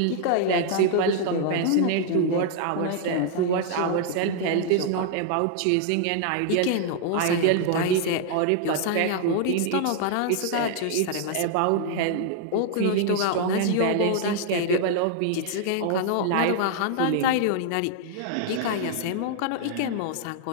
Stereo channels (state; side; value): different; both; correlation -0.01